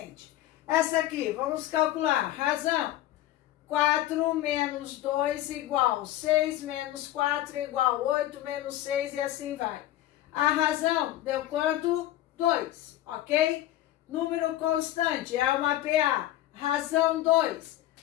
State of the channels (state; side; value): quieter; right; 14.1 dB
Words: Essa aqui, vamos calcular. Razão, 4 menos 2 igual 6 menos 4 igual 8 menos 6 e assim vai. A razão deu quanto? 2, ok? Número constante é uma PA. Razão 2,